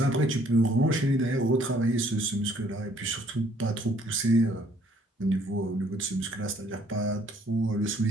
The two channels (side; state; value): both; normal; correlation 0.62